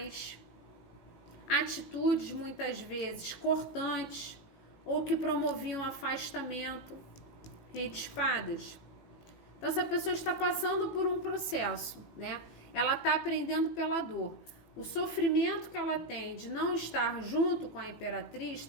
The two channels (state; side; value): late; right; 18 ms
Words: atitudes muitas vezes cortantes ou que promoviam afastamento. Rei de Espadas. Então essa pessoa está passando por um processo, né? Ela está aprendendo pela dor. O sofrimento que ela tem de não estar junto com a imperatriz